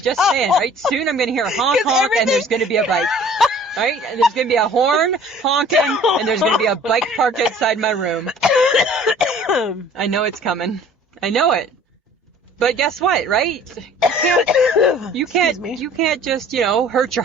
saying, right? Soon I'm going to hear a honk, and there's going to be a bike. Right? And there's going to be a horn honking, and there's going to be a bike parked outside my room. I know it's coming. I know it. But guess what, right? You can't just, hurt your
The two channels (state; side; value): normal; both; correlation 0.51